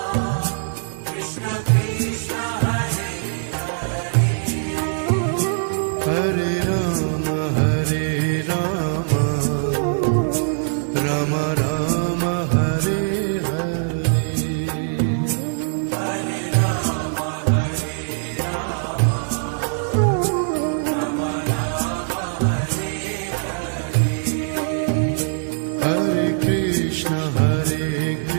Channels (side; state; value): left; silent; digital silence